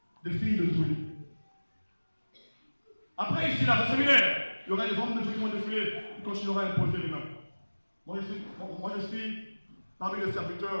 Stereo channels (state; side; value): inverted; both; correlation -1.00